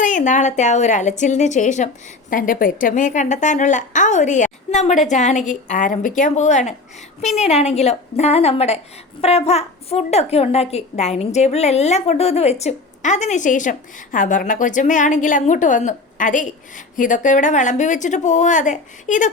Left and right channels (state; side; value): quieter; right; 3.4 dB